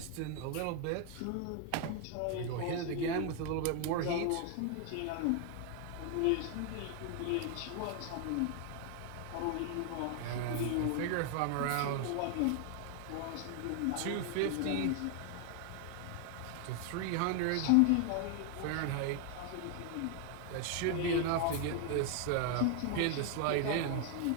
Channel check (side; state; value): both; different; correlation 0.00